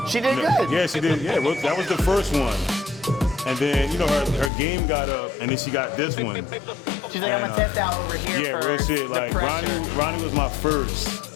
She did good. Yeah, she did. Yeah, that was the first one. And then, you know, her game got up, and then she got this one. She's like, I'm gonna test out over here Yeah, for real shit. the Like, pressure. Ronnie was my first.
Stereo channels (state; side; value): drops out; right; at 4.5 s